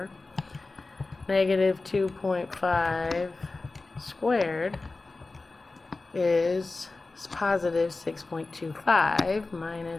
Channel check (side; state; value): right; quieter; 3.4 dB